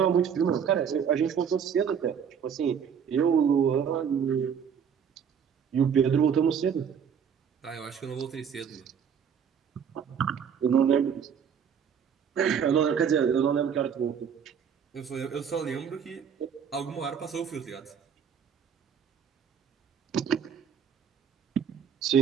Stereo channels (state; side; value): quieter; left; 7.5 dB